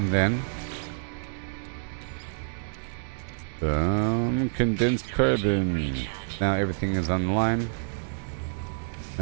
then some condensed carbon. Now everything is on the line.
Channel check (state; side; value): silent; left; 60 dB below the other